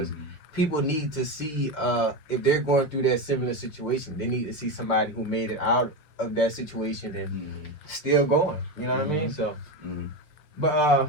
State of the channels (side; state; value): right; late; 6.7 ms